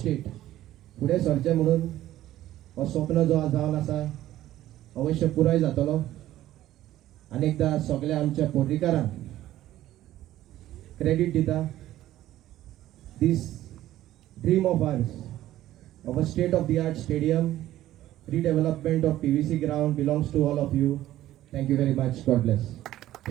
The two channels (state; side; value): quieter; left; 14.0 dB